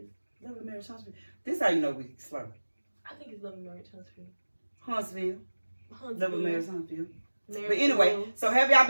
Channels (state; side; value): inverted; both; correlation -1.00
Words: Love and marriage Huntsville. This is how you know we slur. I think it's Love and Marriage Huntsville. Huntsville. Love and marriage Huntsville. Marriage But anyway, Rules. so have y'all